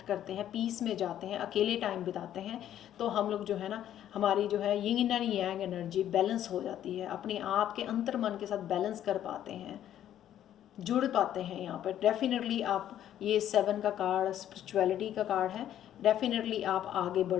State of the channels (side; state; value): right; quieter; 11.2 dB